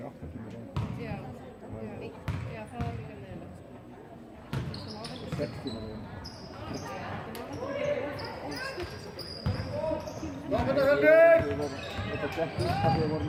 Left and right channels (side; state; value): both; identical; correlation 1.00